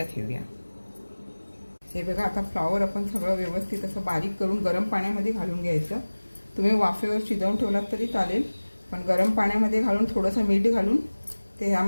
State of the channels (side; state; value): both; inverted; correlation -1.00